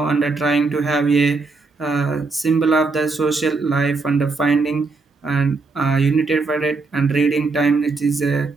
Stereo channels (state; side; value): quieter; left; 3.9 dB